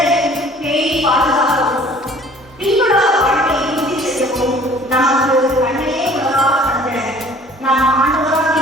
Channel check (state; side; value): normal; both; correlation 0.52